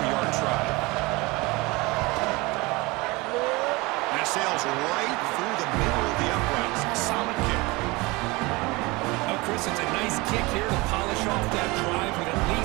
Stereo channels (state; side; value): quieter; left; 23.7 dB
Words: try. And it sails right through the middle of the uprights. Solid kick. Oh, Chris, it's a nice kick here to polish off that drive with at